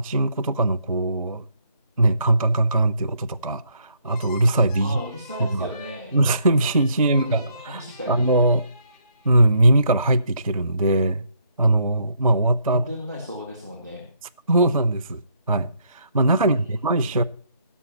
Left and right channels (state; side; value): inverted; both; correlation -0.71